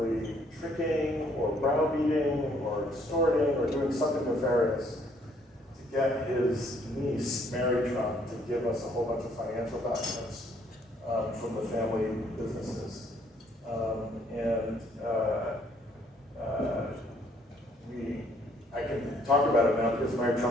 tricking or browbeating or extorting or doing something nefarious to get his niece, Mary Trump, to give us a whole bunch of financial documents from the family businesses. I can talk about it now because Mary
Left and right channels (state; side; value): normal; both; correlation 0.65